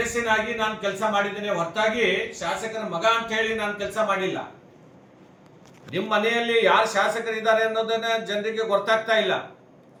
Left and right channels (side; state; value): both; identical; correlation 1.00